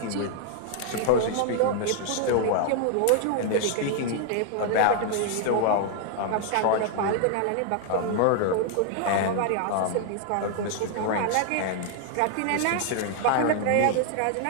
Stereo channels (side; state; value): both; different; correlation 0.00